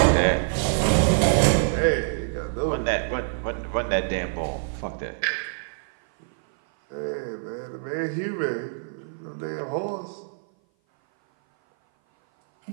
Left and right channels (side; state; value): left; silent; 57 dB below the other